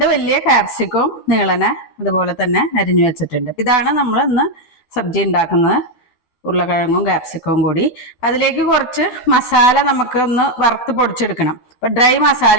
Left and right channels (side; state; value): right; late; 12 ms